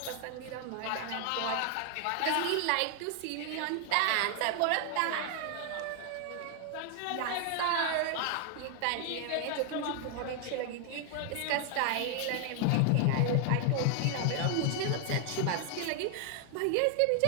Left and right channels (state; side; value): different; both; correlation 0.00